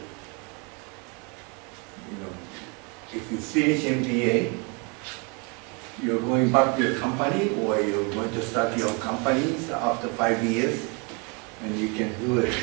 If you finish MBA, you're going back to your company, or you're going to start your companies after 5 years, and you can do it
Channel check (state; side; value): quieter; left; 31.6 dB